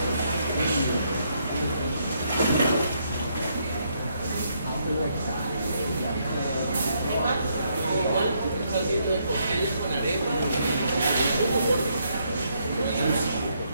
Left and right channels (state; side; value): inverted; both; correlation -0.74